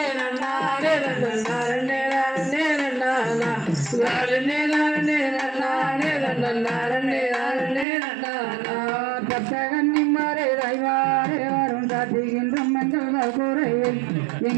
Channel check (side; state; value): left; drops out; at 7.9 s